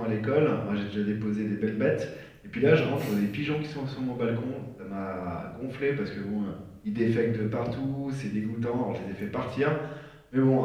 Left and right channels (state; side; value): identical; both; correlation 1.00